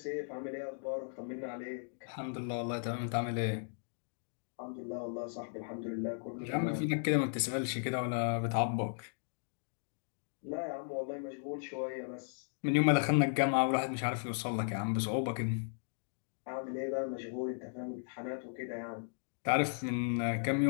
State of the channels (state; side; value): silent; right; digital silence